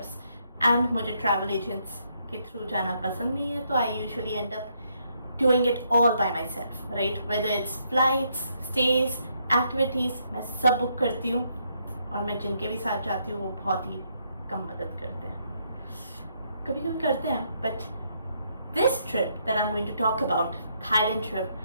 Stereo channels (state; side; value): inverted; both; correlation -0.74